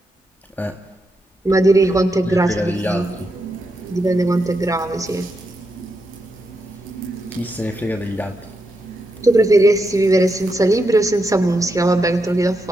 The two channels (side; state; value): both; normal; correlation 0.84